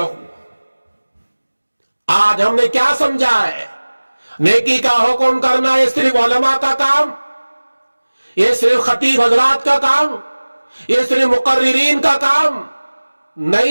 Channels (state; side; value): inverted; both; correlation -1.00